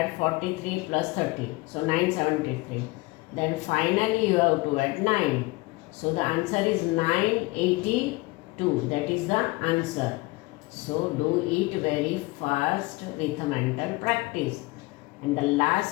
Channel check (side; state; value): right; quieter; 22.7 dB